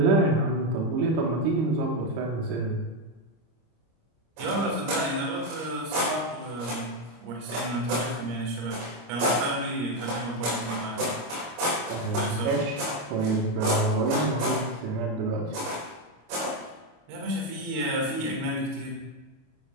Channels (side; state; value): left; late; 26 ms